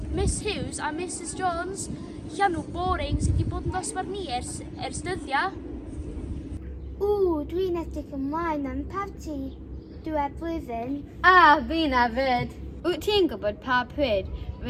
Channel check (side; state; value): both; identical; correlation 1.00